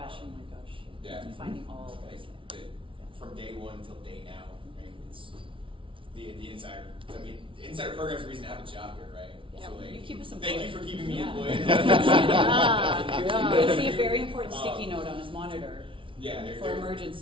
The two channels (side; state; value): left; late; 0.25 ms